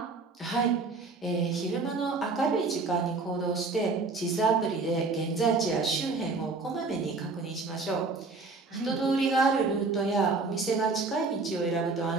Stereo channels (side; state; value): left; quieter; 3.9 dB